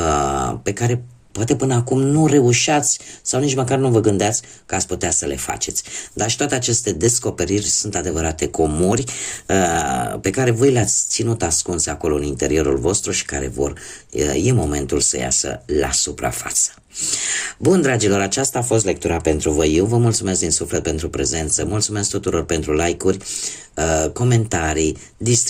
pe care poate până acum nu reușeați sau nici măcar nu vă gândeați că ați putea să le faceți. Dar și toate aceste descoperiri sunt adevărate comori pe care voi le-ați ținut ascunse acolo în interiorul vostru și care e momentul să iasă la suprafață. Bun, dragilor, aceasta a fost lectura pentru voi. Eu vă mulțumesc din suflet pentru prezență, mulțumesc tuturor pentru like-uri, comentarii,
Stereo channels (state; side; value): identical; both; correlation 1.00